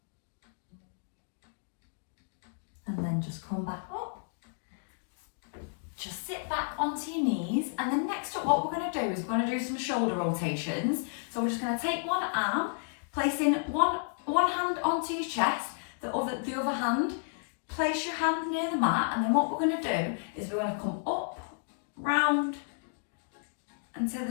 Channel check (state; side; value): silent; right; digital silence